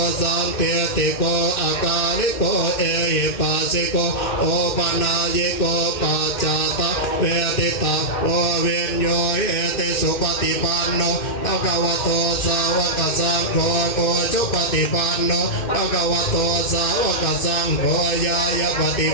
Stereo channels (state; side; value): late; right; 2.1 ms